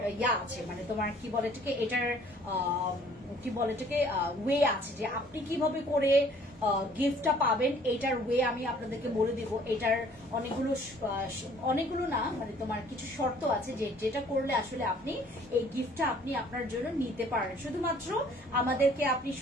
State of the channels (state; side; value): normal; both; correlation 0.57